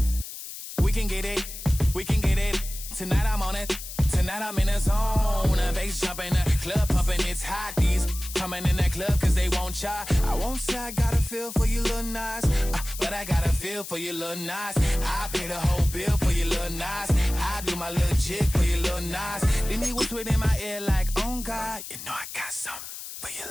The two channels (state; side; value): noise; left; hiss, 11 dB below the sound